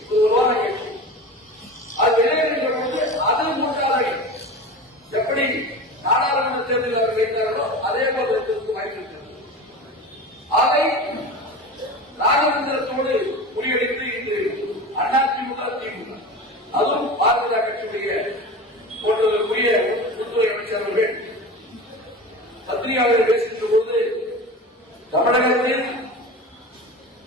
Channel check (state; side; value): normal; both; correlation 0.31